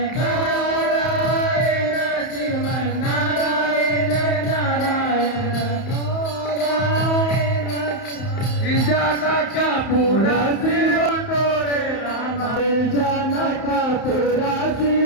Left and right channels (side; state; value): right; late; 31 ms